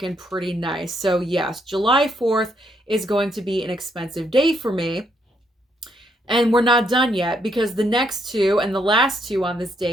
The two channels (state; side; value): normal; both; correlation 0.74